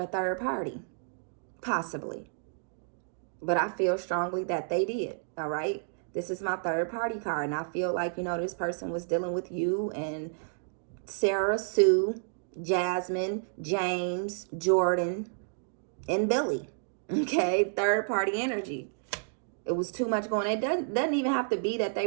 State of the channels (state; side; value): silent; left; digital silence